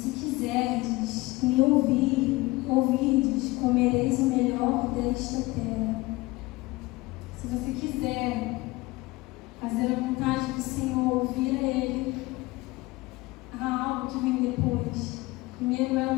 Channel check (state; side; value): quieter; right; 21.3 dB